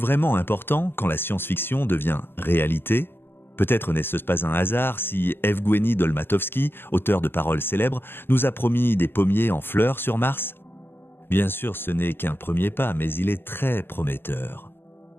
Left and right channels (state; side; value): late; right; 0.10 ms